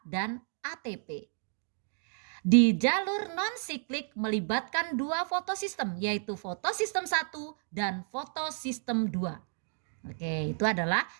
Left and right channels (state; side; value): silent; left; digital silence